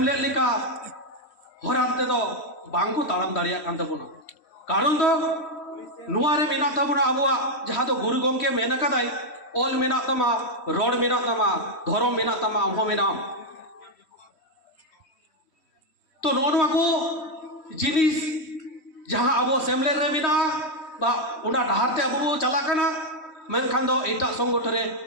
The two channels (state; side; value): late; right; 3.1 ms